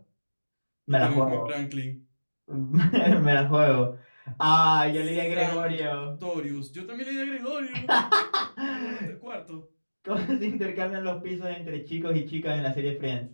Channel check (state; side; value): inverted; both; correlation -1.00